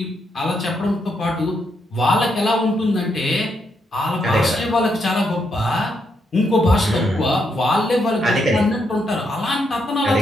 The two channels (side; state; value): both; normal; correlation 0.79